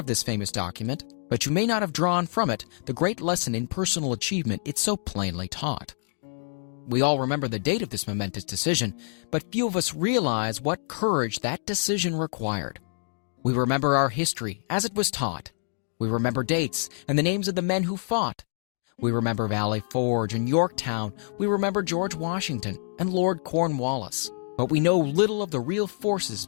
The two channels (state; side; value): silent; right; digital silence